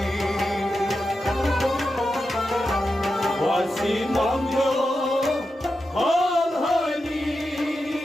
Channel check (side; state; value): both; normal; correlation 0.89